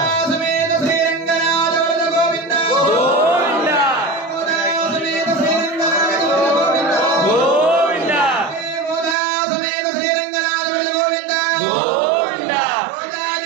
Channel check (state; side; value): drops out; left; at 9.2 s